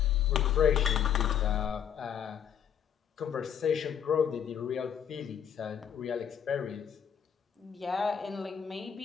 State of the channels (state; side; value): quieter; right; 8.6 dB